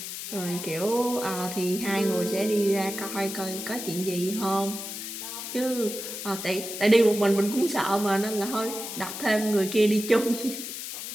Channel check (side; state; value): left; noise; hiss, 7 dB below the sound